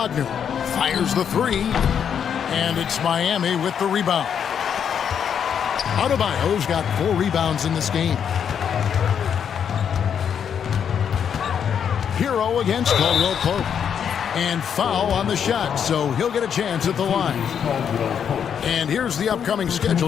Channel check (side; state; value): right; quieter; 7.9 dB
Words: Fires the 3. And it's Miami with the rebound. Adebayo's got 4 rebounds in this game. Hero against Caldwell-Pope. And foul on the shot, so he'll get a chance at the line. And here's the upcoming